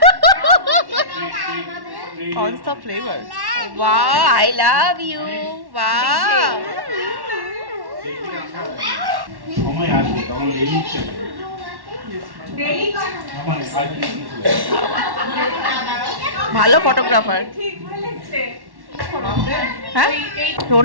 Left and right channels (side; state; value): left; late; 1.1 ms